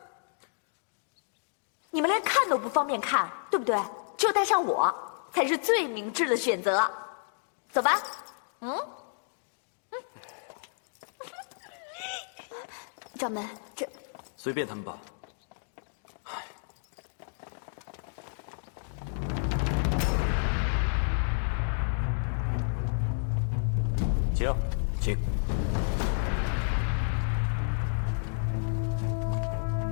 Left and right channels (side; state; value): right; silent; digital silence